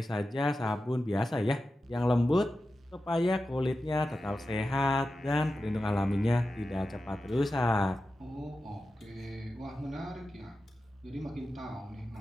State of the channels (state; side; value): normal; both; correlation 0.92